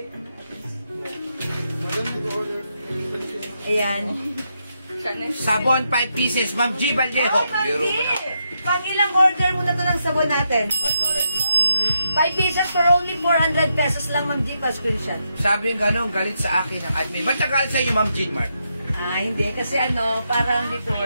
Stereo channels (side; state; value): both; inverted; correlation -0.82